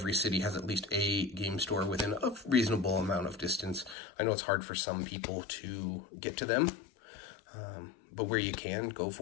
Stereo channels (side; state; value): right; drops out; at 4.0 s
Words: city has at least a game store within a reasonable amount of distance. I know it's hard for some people to get to them, but where you can, go